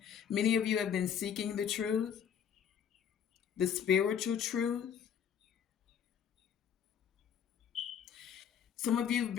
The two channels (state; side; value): quieter; right; 8.2 dB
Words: Many of you have been seeking the truth, the spiritual truth. Some of you have